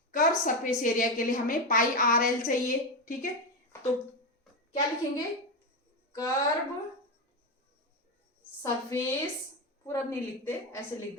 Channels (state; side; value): normal; both; correlation 0.12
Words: कर्व सरफेस एरिया के लिए हमें पाई आर एल चाहिए। ठीक है, तो क्या लिखेंगे, कर्व सरफेस, पूरा नहीं लिखते, ऐसे लिख